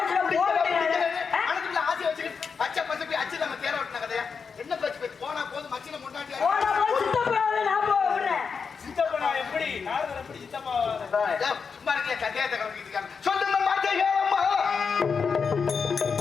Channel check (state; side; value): quieter; right; 5.7 dB